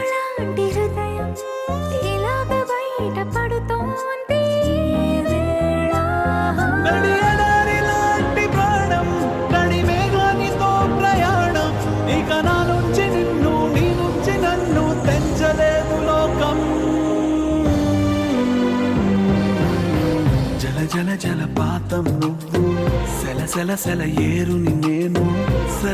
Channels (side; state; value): both; identical; correlation 1.00